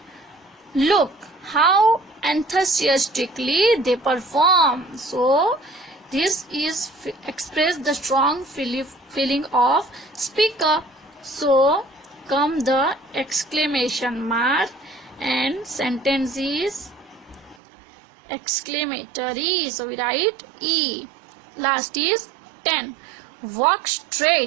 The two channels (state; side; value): drops out; left; at 17.6 s